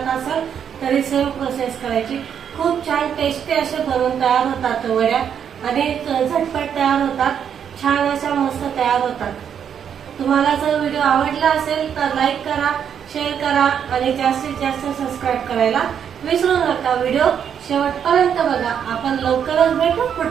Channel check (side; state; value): left; quieter; 8.2 dB